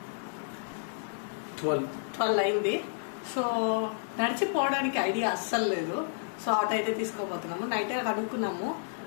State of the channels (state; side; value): silent; right; digital silence